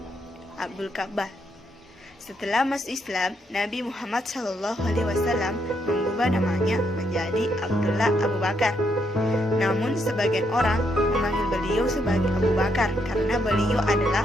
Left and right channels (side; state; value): both; normal; correlation 0.76